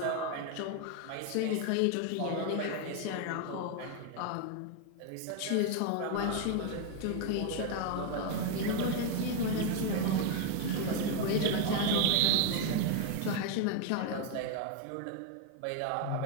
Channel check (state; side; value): different; both; correlation 0.01